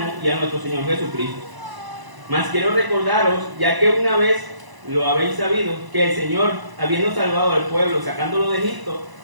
y a nuestro Señor Jesucristo. Mas quiero recordaros, ya que una vez lo habéis sabido, que el Señor, habiendo salvado al pueblo, sacándolo de Egipto,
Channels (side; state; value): left; late; 1.0 ms